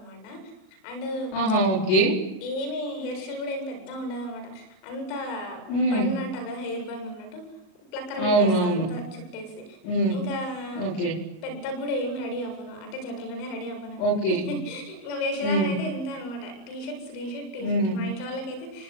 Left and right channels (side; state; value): right; late; 38 ms